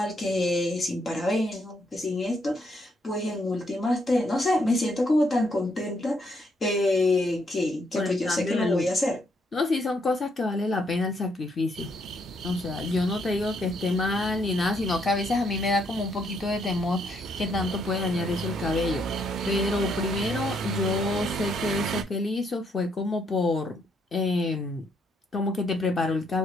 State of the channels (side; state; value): both; normal; correlation 0.73